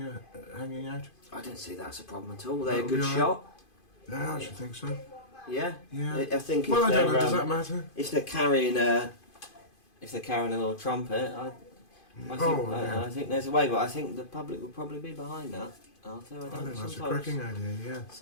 hanging out? I don't see that's a problem at all. They're a good shot. Yeah, I should think so. Yeah. Yeah. I think. Well, I don't know. Does that matter? If they're carrying a if they're carrying a little trumpet, I think there's a way, but I think the public will probably be behind that. Arthur, I think that's a cracking idea, yeah.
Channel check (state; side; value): late; right; 2.5 ms